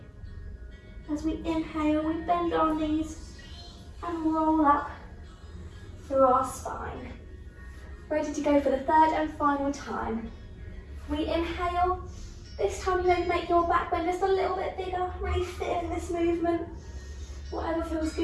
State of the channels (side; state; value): both; identical; correlation 1.00